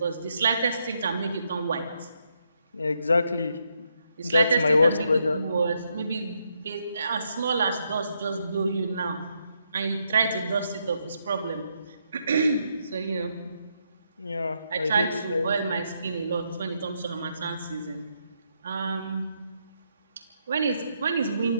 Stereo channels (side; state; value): both; inverted; correlation -0.78